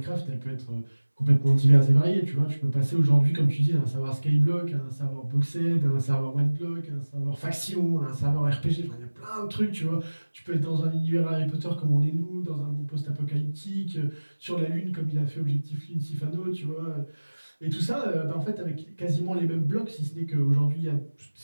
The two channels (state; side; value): inverted; both; correlation -1.00